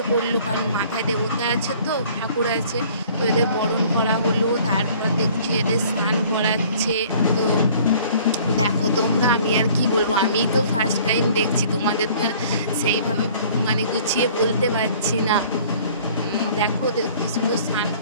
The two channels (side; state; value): both; inverted; correlation -0.53